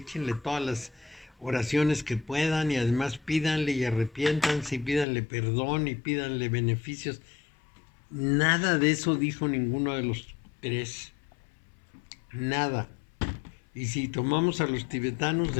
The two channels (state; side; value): drops out; right; at 5.1 s